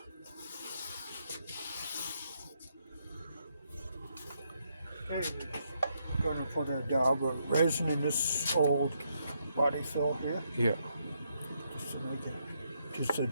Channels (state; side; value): inverted; both; correlation -0.77